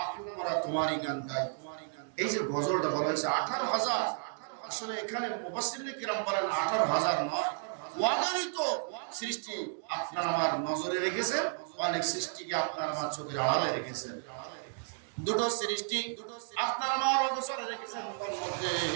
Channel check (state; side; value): silent; left; digital silence